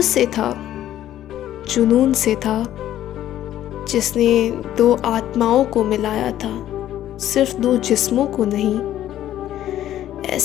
से था, जुनून से था, जिसने दो आत्माओं को मिलाया था, सिर्फ दो जिस्मों को नहीं।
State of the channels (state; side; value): quieter; right; 12.3 dB